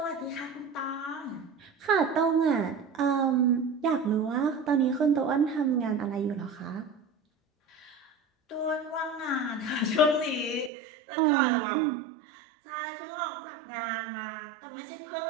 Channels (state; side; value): drops out; left; at 10.7 s